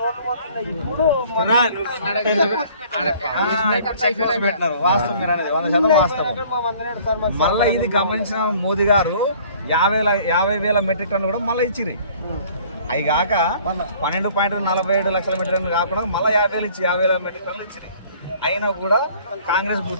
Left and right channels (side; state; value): both; inverted; correlation -0.54